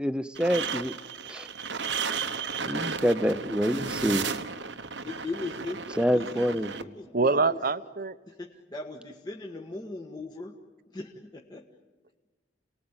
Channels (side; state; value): both; normal; correlation 0.50